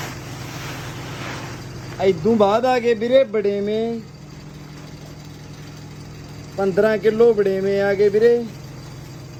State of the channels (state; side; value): identical; both; correlation 1.00